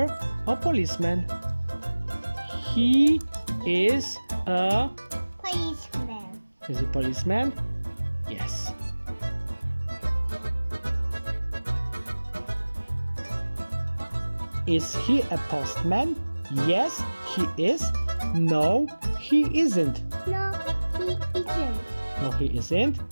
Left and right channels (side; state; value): both; inverted; correlation -1.00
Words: or policeman. He is a... Policeman. Is it policeman? Yes. Is he a postman? Yes, he is. No, he isn't. No, he isn't. No, he isn't.